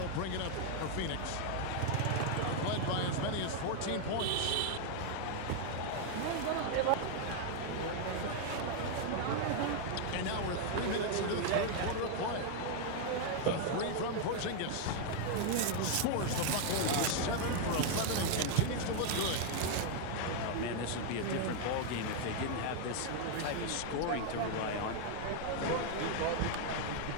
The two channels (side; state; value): both; different; correlation 0.00